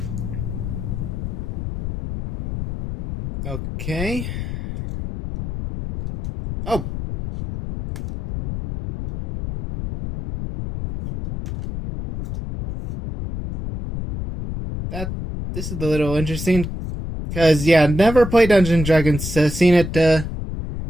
Okay. Oh. This is a little interesting. Because, yeah, never played Dungeons & Dragons. Seen it, through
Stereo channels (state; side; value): noise; left; rumble, 6 dB below the sound